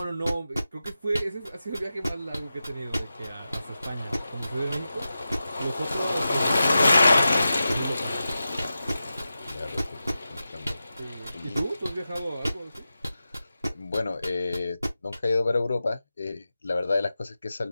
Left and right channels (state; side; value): inverted; both; correlation -0.92